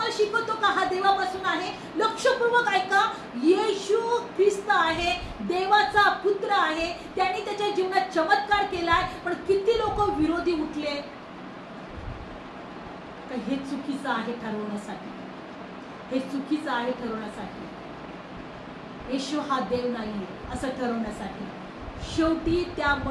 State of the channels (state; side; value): identical; both; correlation 1.00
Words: शिकवतो का हा देवापासून आहे. लक्षपूर्वक ऐका, येशू ख्रिस्त आहे, देवाचा पुत्र आहे. त्यांनी त्याच्या जीवनात चमत्कार केलाय, पण किती लोक विरोधी उठले. हे चुकीचं आहे ठरवण्यासाठी, हे चुकीचं आहे ठरवण्यासाठी. येशू हा देव नाहीये असं ठरवण्यासाठी. शेवटी त्या